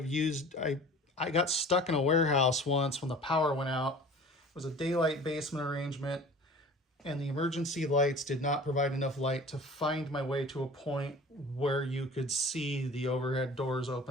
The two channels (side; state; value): both; normal; correlation 0.43